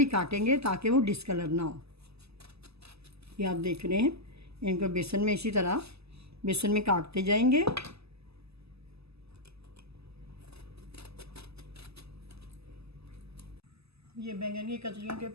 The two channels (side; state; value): left; late; 0.79 ms